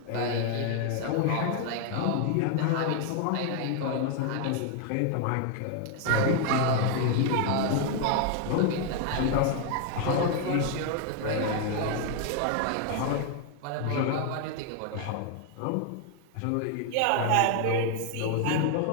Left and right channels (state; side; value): different; both; correlation 0.00